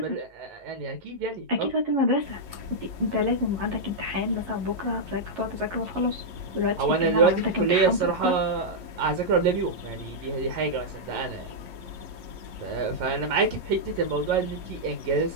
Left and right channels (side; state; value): left; late; 11 ms